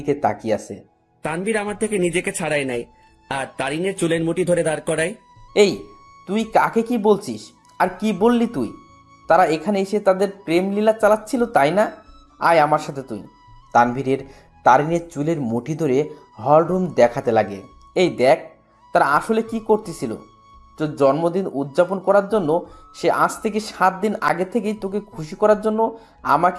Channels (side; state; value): both; identical; correlation 1.00